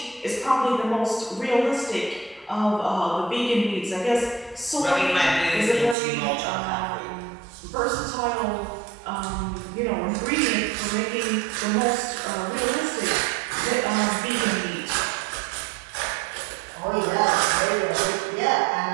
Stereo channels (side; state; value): left; drops out; at 6.0 s